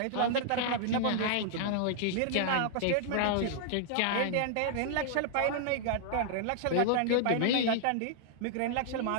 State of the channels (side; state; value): both; different; correlation -0.01